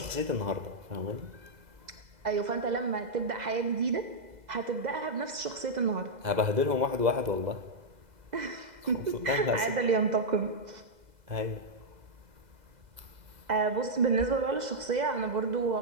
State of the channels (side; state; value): left; late; 2.0 ms